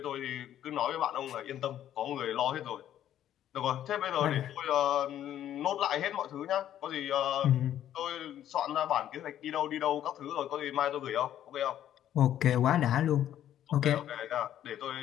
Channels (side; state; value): right; quieter; 11.3 dB